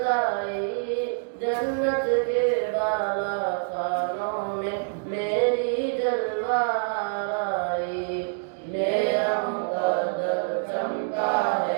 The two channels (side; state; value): left; silent; digital silence